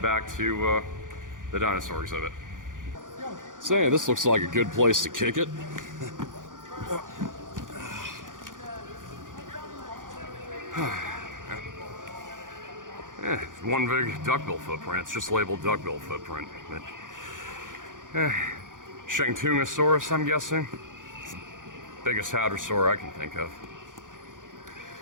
back to the dinosaur exhibit. So yeah, this looks like a good place to kick it. Yeah, one big duckbill footprint. It's just labeled duckbill footprint. But, Shantungosaurus, I'm guessing. It's the biggest hadrosaur I can think of.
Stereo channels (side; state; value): left; late; 0.88 ms